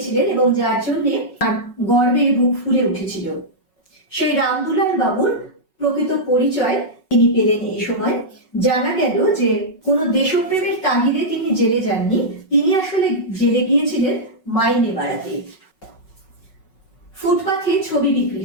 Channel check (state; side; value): late; right; 5.4 ms